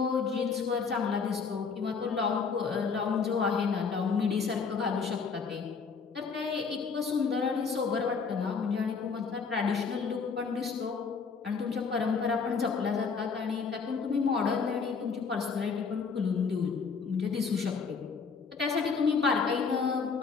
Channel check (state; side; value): quieter; right; 5.4 dB